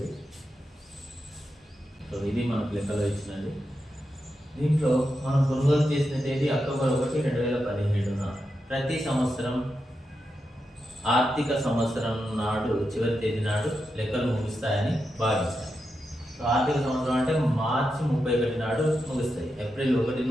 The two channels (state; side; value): normal; both; correlation 0.87